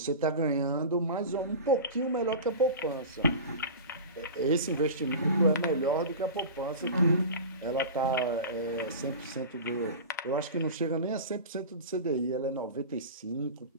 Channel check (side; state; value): both; inverted; correlation -0.31